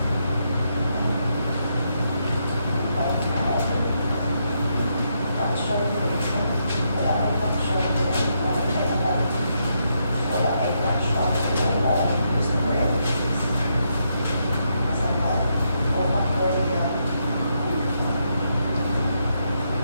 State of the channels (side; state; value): both; inverted; correlation -0.79